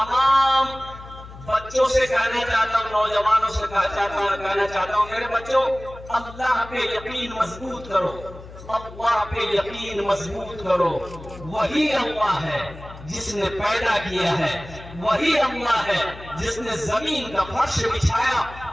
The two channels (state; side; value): noise; left; hum, 16 dB below the sound